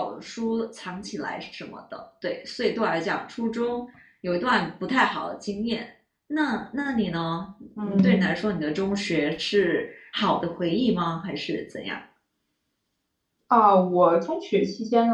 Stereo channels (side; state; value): both; identical; correlation 1.00